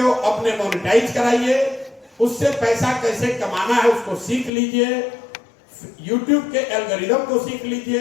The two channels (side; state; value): right; drops out; at 4.5 s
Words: अपने मोनेटाइज कराइए, उससे पैसा कैसे कमाना है उसको सीख लीजिए, यूट्यूब के एल्गोरिदम को सीख